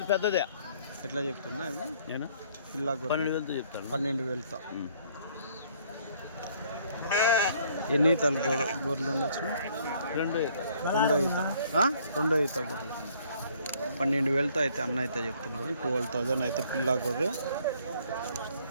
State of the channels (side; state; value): both; inverted; correlation -0.62